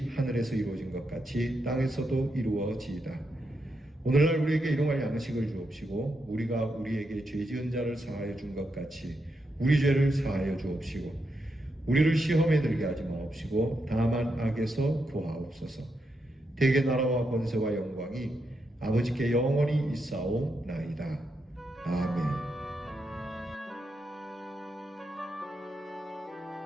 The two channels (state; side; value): normal; both; correlation 0.83